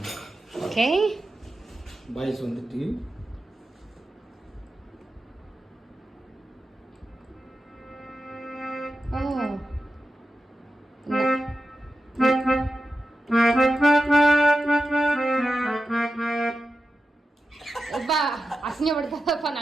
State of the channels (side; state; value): both; normal; correlation 0.91